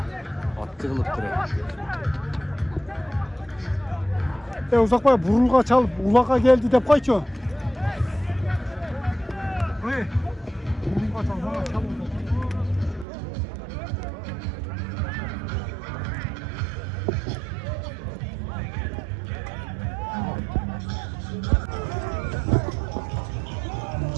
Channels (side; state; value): left; drops out; at 13.1 s